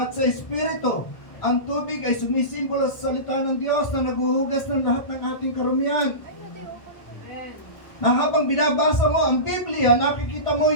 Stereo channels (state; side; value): late; right; 1.3 ms